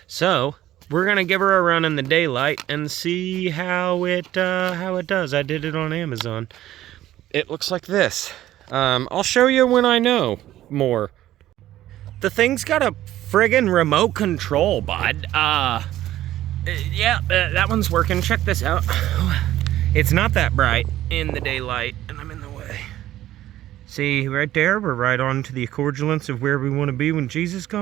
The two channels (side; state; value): left; quieter; 13.8 dB